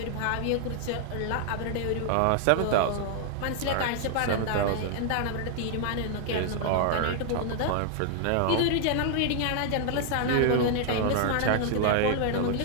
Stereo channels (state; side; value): different; both; correlation 0.00